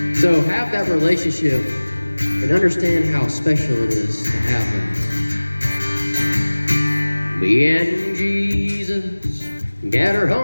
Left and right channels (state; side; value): inverted; both; correlation -1.00